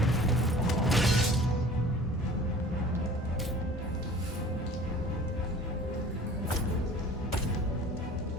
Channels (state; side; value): normal; both; correlation 0.46